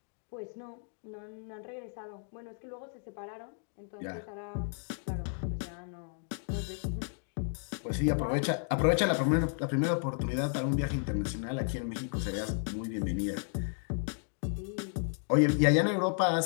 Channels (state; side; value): silent; right; 56 dB below the other